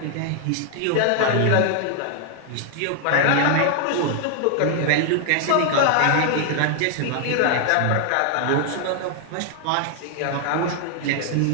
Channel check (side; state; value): both; different; correlation 0.00